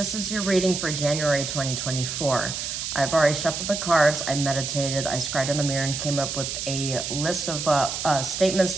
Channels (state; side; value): noise; right; hiss, 4 dB below the sound